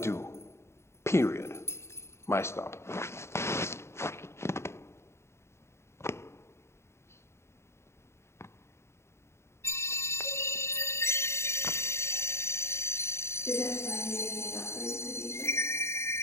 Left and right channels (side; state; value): right; late; 0.13 ms